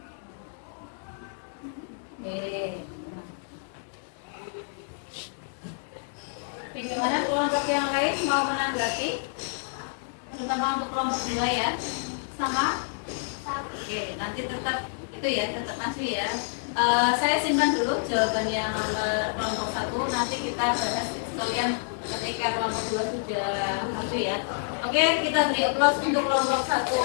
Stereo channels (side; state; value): right; silent; digital silence